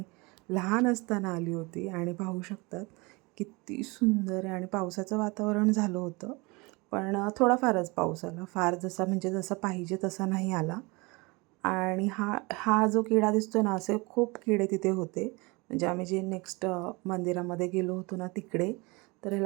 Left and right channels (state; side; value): quieter; left; 26.0 dB